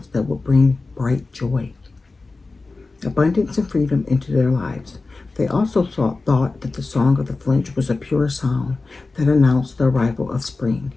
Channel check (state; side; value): quieter; right; 3.7 dB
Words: that would bring bright joy, abundance, and freedom into their lives. They also thought that the song of the finch was a pure sound that announced the arrival of spring,